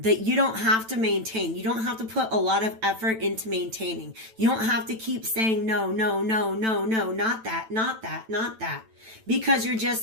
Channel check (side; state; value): left; late; 9.0 ms